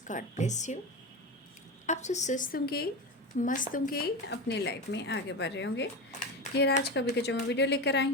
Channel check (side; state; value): both; normal; correlation 0.22